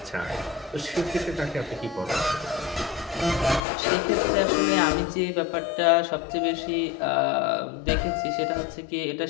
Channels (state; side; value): drops out; right; at 3.6 s